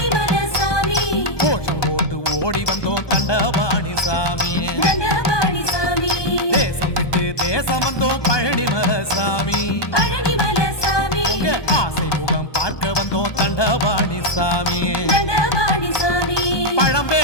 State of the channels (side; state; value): right; late; 1.2 ms